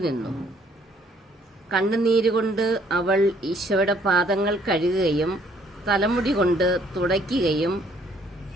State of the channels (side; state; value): both; normal; correlation 0.63